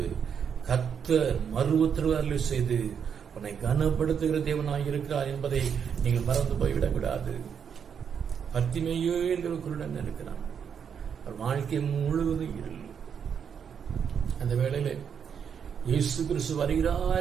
கர்த்தர் மறு உத்தரவு செய்து உன்னை கனப்படுத்துகிற தேவனாய் இருக்கிறார் என்பதை நீங்கள் மறந்து போய்விடக்கூடாது. பத்திமையோ என்கிற குருடன் இருக்கிறான், அவர் வாழ்க்கை முழுவதும் இருள். அந்த வேளையில இயேசு கிறிஸ்து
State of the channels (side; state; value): left; quieter; 7.4 dB